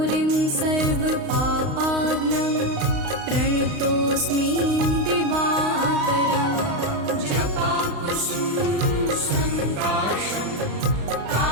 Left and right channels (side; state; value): left; late; 35 ms